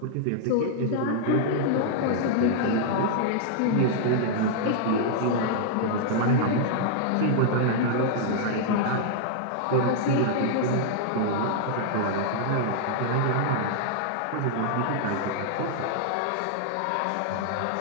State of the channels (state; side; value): different; both; correlation -0.01